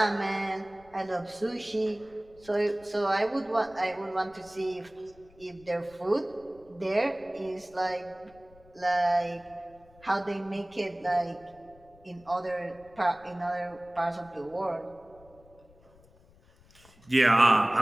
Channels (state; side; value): noise; left; rumble, 27 dB below the sound